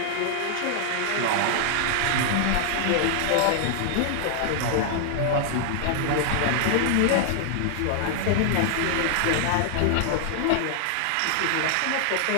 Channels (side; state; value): both; different; correlation 0.00